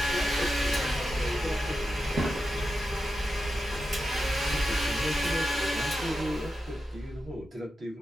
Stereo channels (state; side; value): normal; both; correlation 0.89